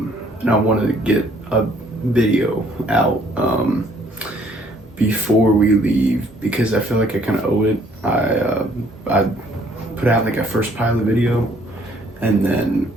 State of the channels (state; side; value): normal; both; correlation 0.62